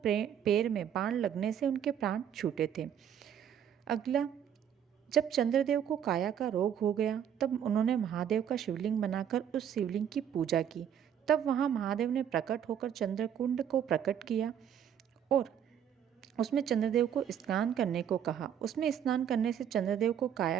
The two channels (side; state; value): left; quieter; 9.0 dB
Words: पैर में बाण लगने से उनके प्राण छूटे थे। अगला, जब चंद्रदेव को काया का रोग हो गया तब उन्होंने महादेव का शिवलिंग बनाकर उस शिवलिंग की पूजा की। तब वहाँ महादेव ने प्रकट होकर चंद्रकुंड को प्रकट किया और उसमें चंद्रदेव को स्नान करने को कहा। उसमें स्नान करने से चंद्रदेव को काया